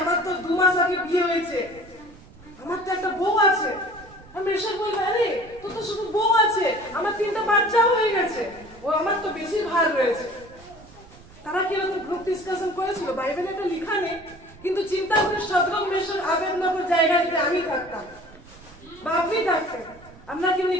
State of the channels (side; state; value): right; noise; rumble, 22 dB below the sound